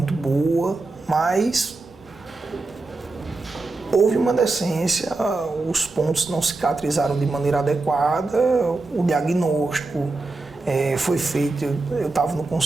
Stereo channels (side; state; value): left; quieter; 3.4 dB